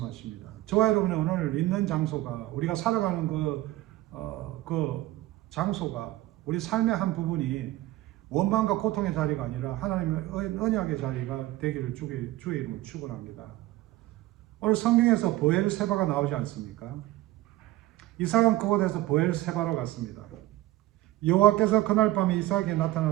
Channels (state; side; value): quieter; left; 16.5 dB